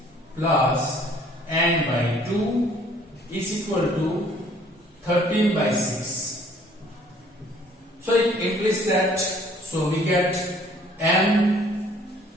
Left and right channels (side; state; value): both; normal; correlation 0.58